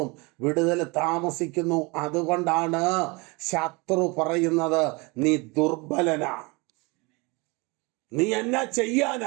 വിടുതൽ താമസിക്കുന്നു. അതുകൊണ്ടാണ് ശത്രു പറയുന്നത്, നീ ദുർബലനാ, നീ എന്നാ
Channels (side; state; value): left; quieter; 26.9 dB